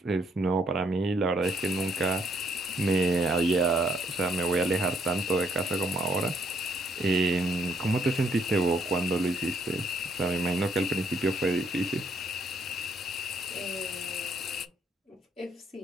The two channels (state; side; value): normal; both; correlation 0.69